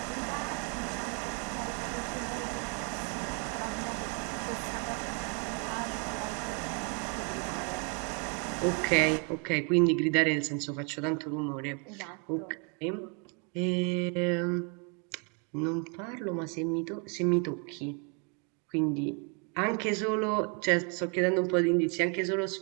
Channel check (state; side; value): quieter; left; 36.4 dB